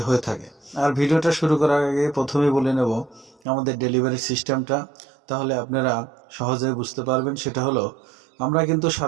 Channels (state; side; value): drops out; left; at 3.4 s